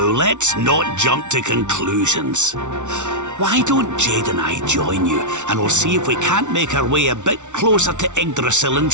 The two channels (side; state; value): left; late; 0.85 ms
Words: not jump to conclusions. Why don't Jade and I join you, and we'll see if we can't make our way a bit closer to Yggdrasil and